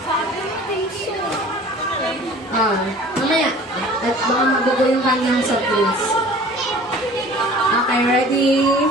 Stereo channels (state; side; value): normal; both; correlation 0.46